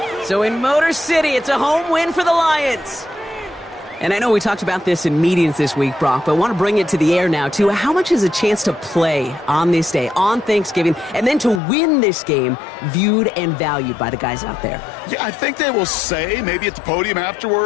So in Motor City, it's a home win for the Lions. And I know we talked about this in meetings this week, Brock, but I want to bring it to the air now, too. How much is a chance to play on this day, on Thanksgiving, and then to win this game viewed and valued by the guys out there? Yeah, I think they will say, maybe at the podium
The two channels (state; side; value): drops out; right; at 11.6 s